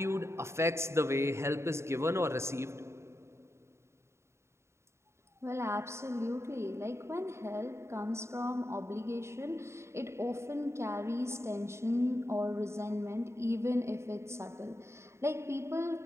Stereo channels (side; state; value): left; late; 0.13 ms